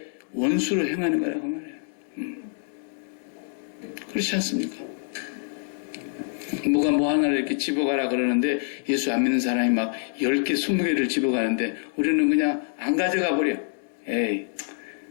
원수로 행하는 거라고 말해요. 그렇지 않습니까? 뭐가 뭐 하나를 이렇게 집어가라 그러는데 예수 안 믿는 사람이 막 10개, 20개를 집어가는데 우리는 그냥 안 가져가 버려. 에이,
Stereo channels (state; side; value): silent; right; 61 dB below the other